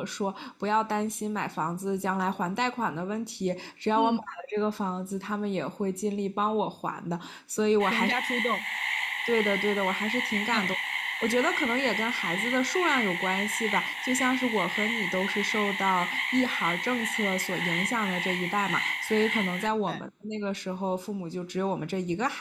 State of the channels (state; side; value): identical; both; correlation 1.00